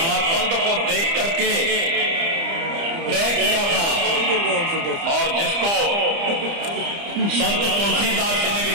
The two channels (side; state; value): left; late; 30 ms